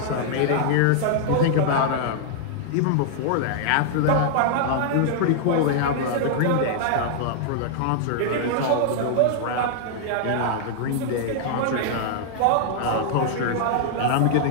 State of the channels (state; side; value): different; both; correlation -0.01